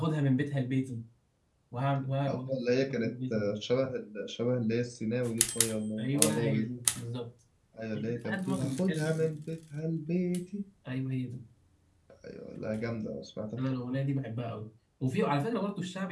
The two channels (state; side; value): identical; both; correlation 1.00